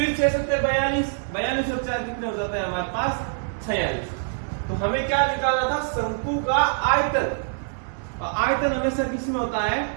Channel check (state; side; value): silent; left; digital silence